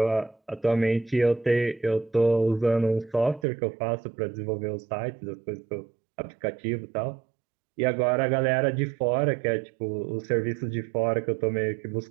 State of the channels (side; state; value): left; drops out; at 3.5 s